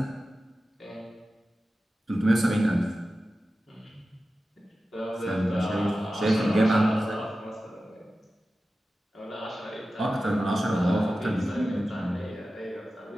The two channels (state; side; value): normal; both; correlation 0.94